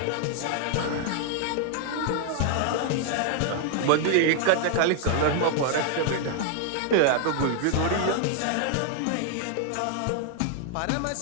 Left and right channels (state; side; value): different; both; correlation 0.00